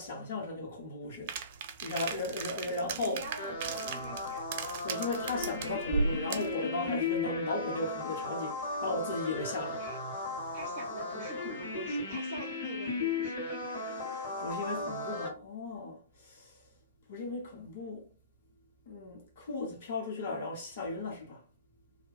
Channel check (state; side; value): inverted; both; correlation -0.42